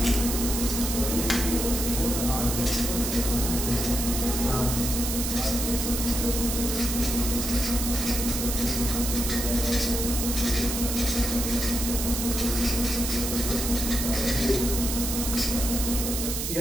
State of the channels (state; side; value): noise; right; hiss, 2 dB below the sound